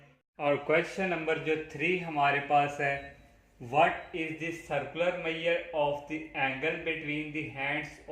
और क्वेश्चन नंबर जो 3 हमारे पास है, What is the circular measure of the angle between the hands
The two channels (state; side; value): identical; both; correlation 1.00